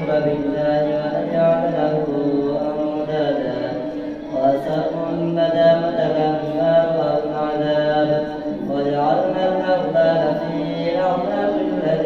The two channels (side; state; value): both; identical; correlation 1.00